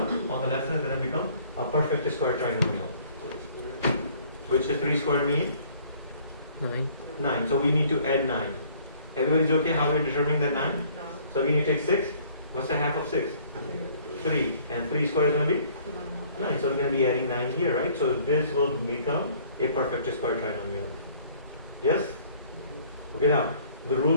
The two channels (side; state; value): both; inverted; correlation -0.57